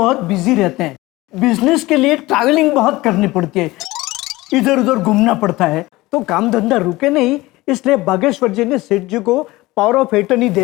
बिजी रहते हैं। बिजनेस के लिए ट्रैवलिंग बहुत करनी पड़ती है, इधर उधर घूमना पड़ता है, तो काम धंधा रुके नहीं, इसलिए बागेश्वर जी ने सेठ जी को पावर ऑफ एटर्नी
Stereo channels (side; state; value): right; quieter; 19.7 dB